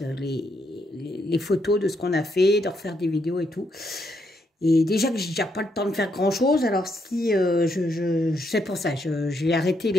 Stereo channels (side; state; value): both; normal; correlation 0.77